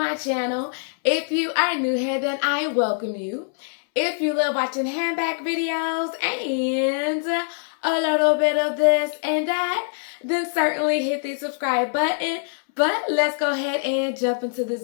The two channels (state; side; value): silent; right; 63 dB below the other